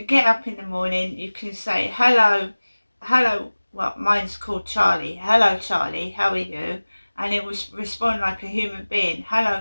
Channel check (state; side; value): inverted; both; correlation -1.00